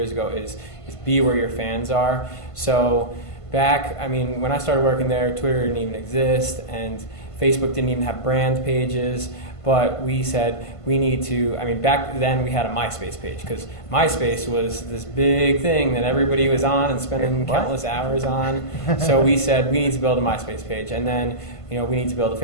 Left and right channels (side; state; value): right; late; 1.5 ms